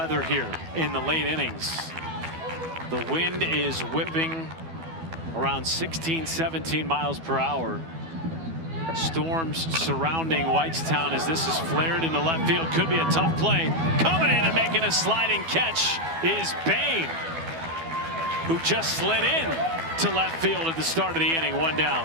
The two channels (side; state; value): left; late; 12 ms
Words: here in the late innings. The wind is whipping around 16, 17 miles per hour. Storms surrounding Whitestown as this is flared into left field. Could be a tough play. Coming in and making a sliding catch is Boehm, who just slid in to left field at the start of the inning. 1